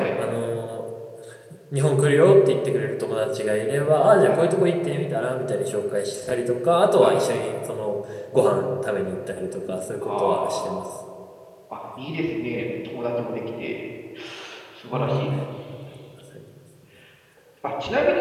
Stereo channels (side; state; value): both; identical; correlation 1.00